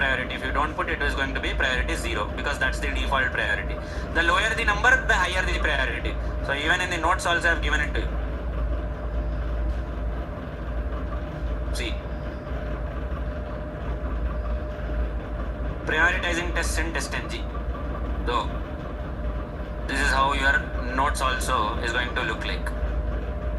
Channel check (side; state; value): both; identical; correlation 1.00